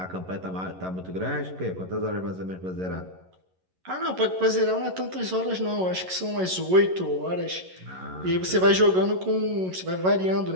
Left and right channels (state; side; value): late; left; 11 ms